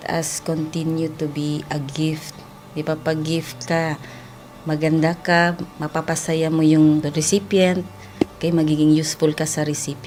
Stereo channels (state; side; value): identical; both; correlation 1.00